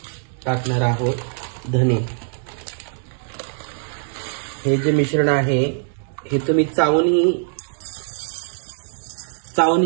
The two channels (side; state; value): left; silent; 64 dB below the other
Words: टाकणार आहोत धने। हे जे मिश्रण आहे हे तुम्ही चावूनही